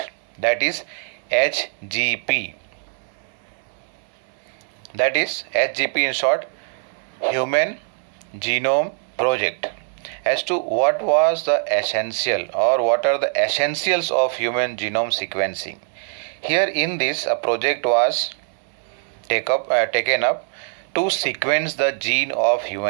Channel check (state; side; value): silent; left; 64 dB below the other